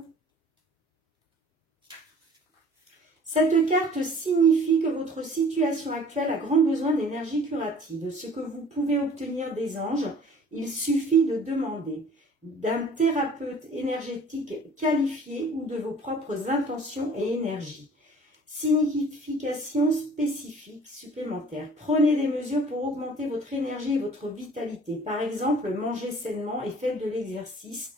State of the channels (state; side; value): normal; both; correlation 0.50